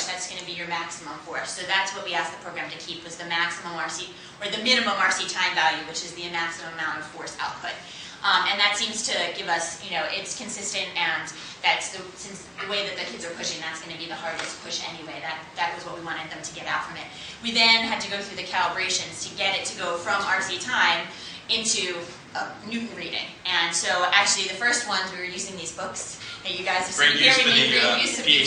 that's going to be your maximum force. So that's what we asked the program to keep, was the maximum RC, or the minimum RC time value, which is the maximum amount of force output. And that seems to give us, it's consistent, and that's since the way that the kids are pushing, that's going to be the hardest push anyway. That was what we wanted them to get out from it. We then had to go through the calibrations to get it to go from RC time into Newton reading. And so actually the first ones, we were using these books that you guys have seen here. We made great use of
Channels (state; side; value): identical; both; correlation 1.00